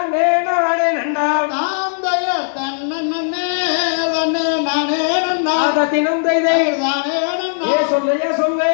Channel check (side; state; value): right; silent; digital silence